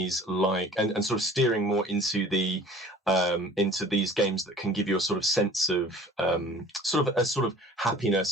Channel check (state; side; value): normal; both; correlation 0.47